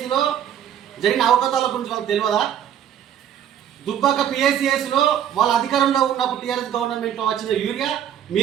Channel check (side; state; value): left; quieter; 9.8 dB